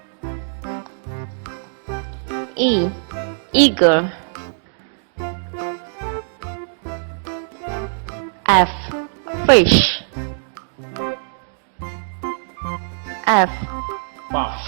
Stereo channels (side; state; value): left; silent; digital silence